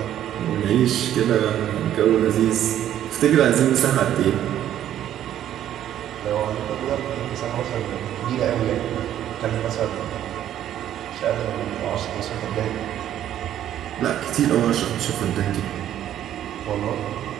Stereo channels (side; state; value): left; quieter; 11.3 dB